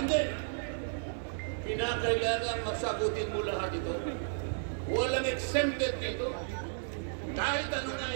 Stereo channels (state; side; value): silent; left; 56 dB below the other